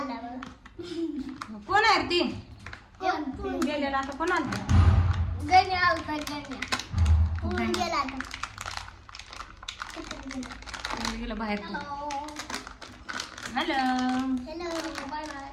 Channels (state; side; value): identical; both; correlation 1.00